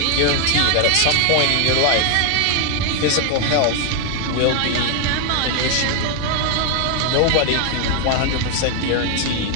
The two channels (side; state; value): both; different; correlation 0.00